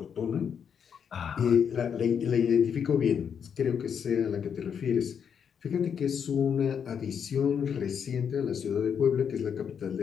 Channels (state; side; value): quieter; right; 7.5 dB